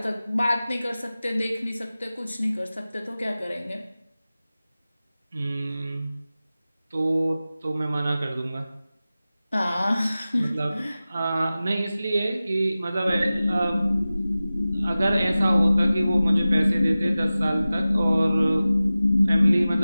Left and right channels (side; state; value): both; inverted; correlation -0.96